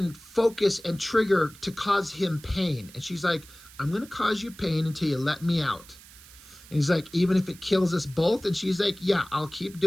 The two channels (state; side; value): noise; right; hiss, 21 dB below the sound